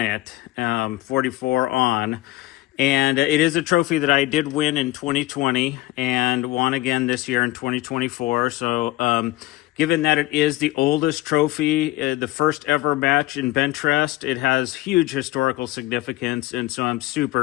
it, 44 on. And it is a trophy that I did win in 2020 and won again this year in 2024. So, given that it is the oldest trophy, the first ever match in bench rest, it has huge historical significance. And so I'm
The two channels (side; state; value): right; quieter; 17.7 dB